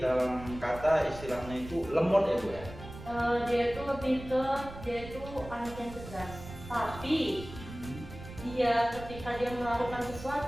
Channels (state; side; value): noise; right; rumble, 14 dB below the sound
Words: kata istilahnya itu lemot ya Bu ya? Dia itu lebih ke dia itu anak yang cerdas, tapi dia ketika dia melakukan